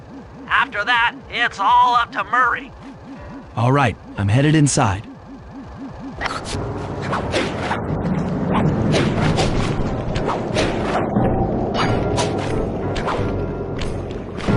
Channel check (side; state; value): both; identical; correlation 1.00